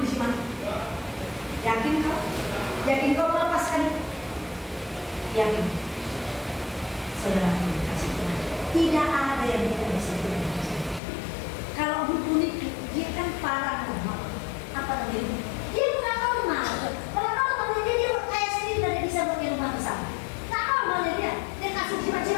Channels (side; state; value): right; drops out; at 11.0 s